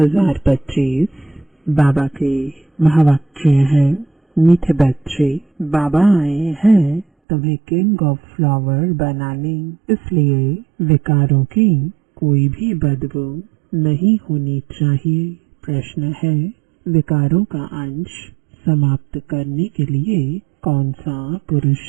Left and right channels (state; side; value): drops out; left; at 7.1 s